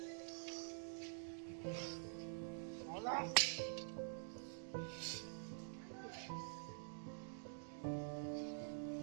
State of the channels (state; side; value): silent; left; digital silence